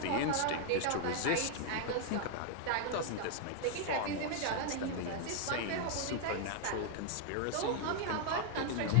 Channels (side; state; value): both; different; correlation 0.00